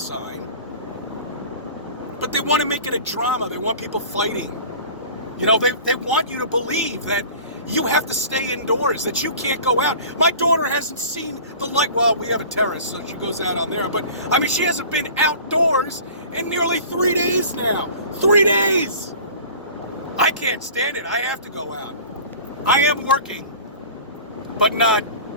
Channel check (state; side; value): inverted; both; correlation -0.42